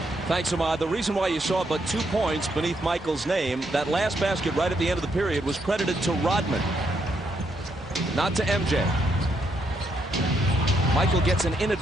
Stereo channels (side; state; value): both; normal; correlation 0.76